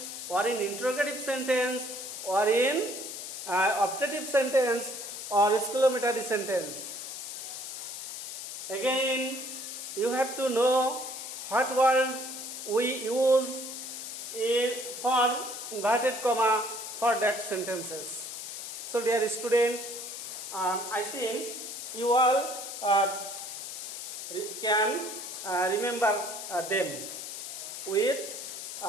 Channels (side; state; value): left; noise; hiss, 8 dB below the sound